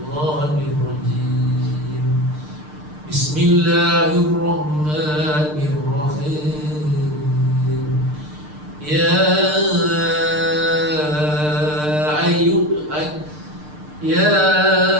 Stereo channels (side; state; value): left; late; 6.6 ms